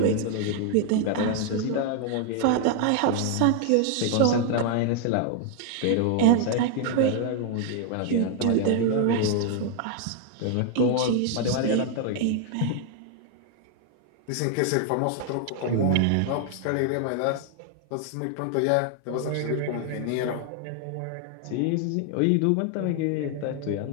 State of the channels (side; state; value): both; different; correlation 0.00